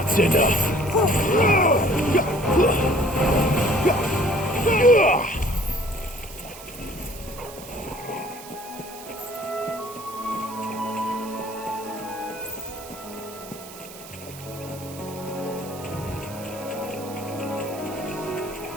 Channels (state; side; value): noise; right; hiss, 16 dB below the sound